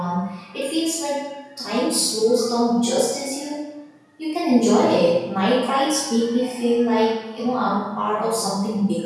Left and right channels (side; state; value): both; identical; correlation 1.00